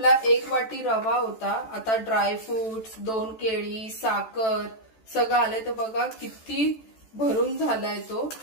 1 वाटी रवा होता. आता ड्रायफ्रुट्स, 2 केळी, साखर सगळं आलंय. तर बघा किती भरून झालाय तो.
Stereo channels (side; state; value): right; late; 14 ms